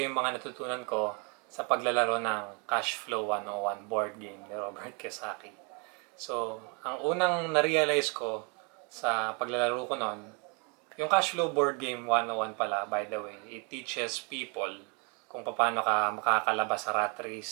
iyo yung mga natutunan ko sa paglalaro ng Cash Flow 101 board game ni Robert Kiyosaki. So, ang unang na-realize ko sa paglalaro ko noon, yung Cash Flow board game 101 pala, by the way, it teaches people kung paano ka makakalabas sa rat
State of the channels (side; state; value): left; quieter; 34.4 dB